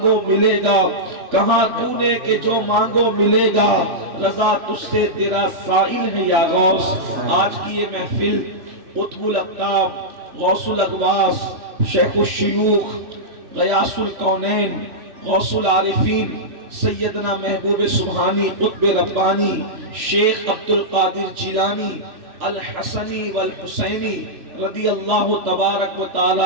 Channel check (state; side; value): late; left; 3.4 ms